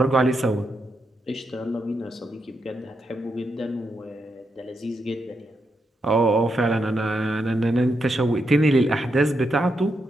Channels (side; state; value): both; normal; correlation 0.83